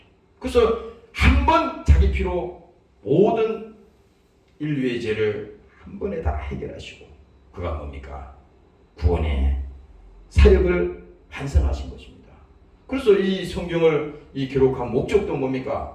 그래서 한 번 자기 피로 모든 인류의 죄를 한 번에 다 해결하시고 그가 뭡니까? 구원의 사역을 완성하신 것입니다. 그래서 이 성경을 이 기록한 목적도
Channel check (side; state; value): both; identical; correlation 1.00